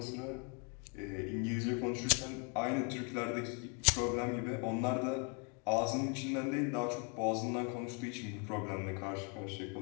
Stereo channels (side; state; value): right; quieter; 35.3 dB